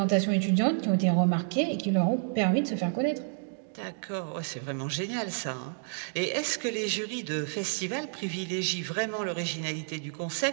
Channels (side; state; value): left; silent; digital silence